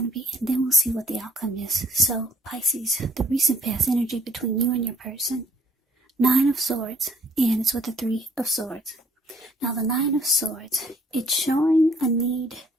to be, and then we'll see what the outcome is. So, Pisces, the recent past energy between you and your person. 9 of Swords, and it's with the 3 of Swords. Now, the 9 of Swords, it's showing a need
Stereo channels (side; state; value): both; normal; correlation 0.60